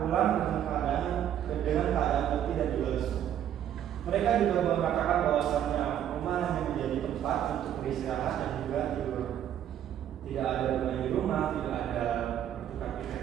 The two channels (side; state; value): left; quieter; 10.4 dB